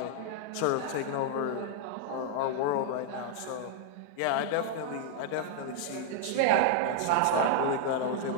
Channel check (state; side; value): different; both; correlation 0.00